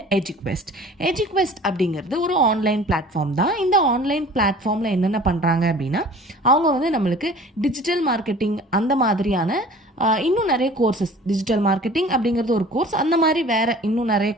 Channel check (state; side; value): normal; both; correlation 0.46